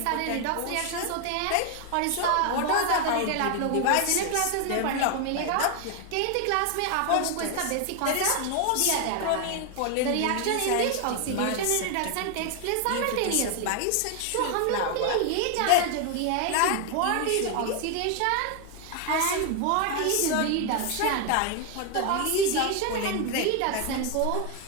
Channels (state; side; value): different; both; correlation 0.01